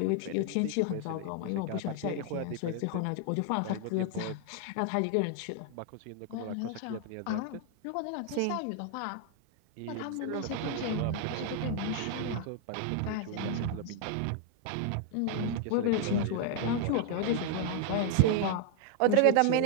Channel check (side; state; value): both; different; correlation 0.00